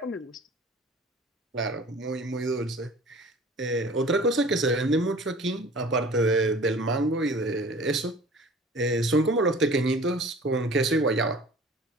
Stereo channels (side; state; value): both; normal; correlation 0.45